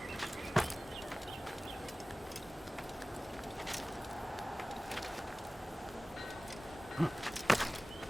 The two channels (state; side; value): normal; both; correlation 0.98